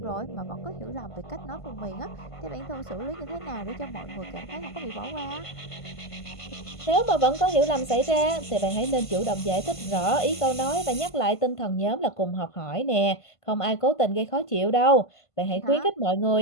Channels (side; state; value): right; late; 1.5 ms